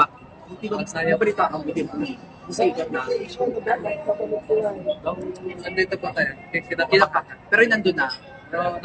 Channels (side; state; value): both; identical; correlation 1.00